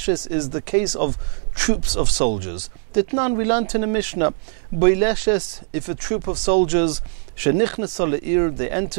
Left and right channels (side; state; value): left; silent; digital silence